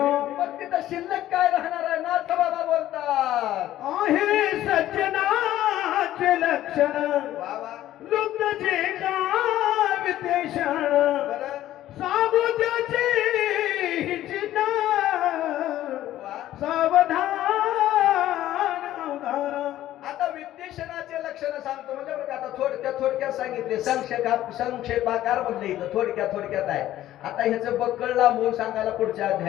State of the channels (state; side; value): quieter; right; 13.5 dB